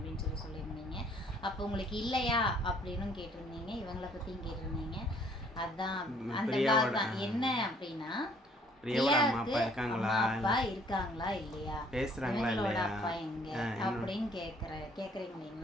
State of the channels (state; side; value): normal; both; correlation 0.61